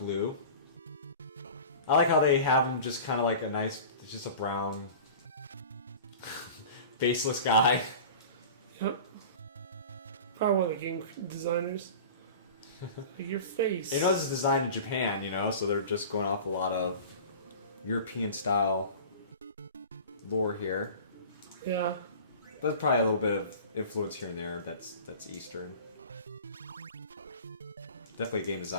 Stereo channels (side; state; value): both; inverted; correlation -0.38